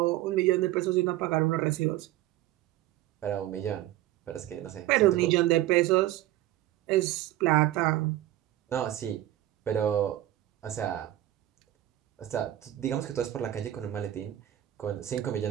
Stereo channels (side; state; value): left; quieter; 14.1 dB